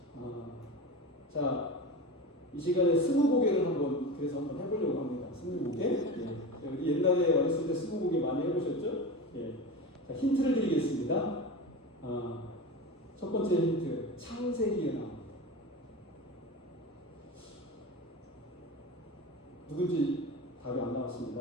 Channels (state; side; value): normal; both; correlation 0.27